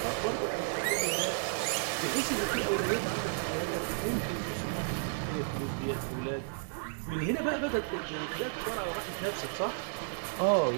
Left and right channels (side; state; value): left; silent; digital silence